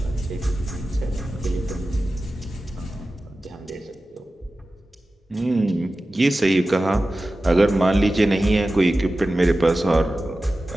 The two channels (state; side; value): normal; both; correlation 0.95